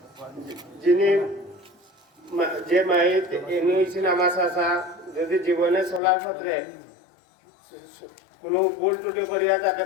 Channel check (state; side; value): drops out; right; at 6.0 s